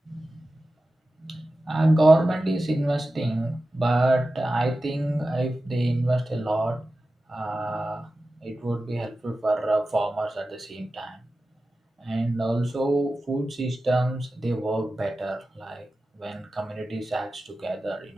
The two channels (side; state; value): both; normal; correlation 0.94